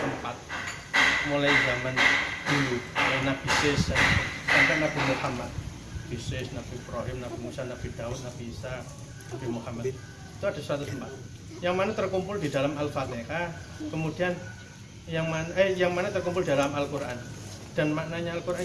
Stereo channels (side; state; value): both; identical; correlation 1.00